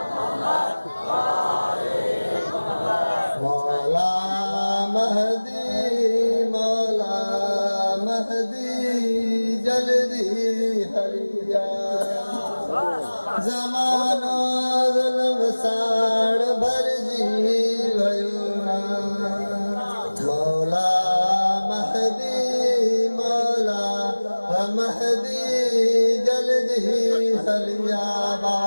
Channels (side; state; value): both; inverted; correlation -1.00